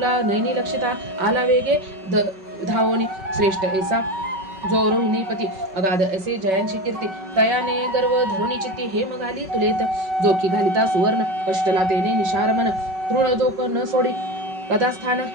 नयनी लक्षिता. आला वेगे धावोनी, श्रेष्ठ ऐसा जो रोहिणीपती. अगाध असे जयांची कीर्ती, तयाने गर्व धरुणी चित्ती. हेम घाली तुलेत, जोखी घालिता सुवर्ण. कष्टला तेने निशार मन, तृण जोख न सोडी. कथास्थान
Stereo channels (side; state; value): left; late; 5.3 ms